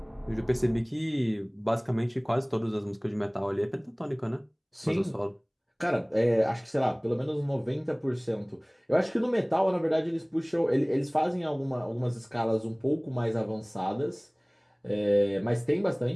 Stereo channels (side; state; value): both; identical; correlation 1.00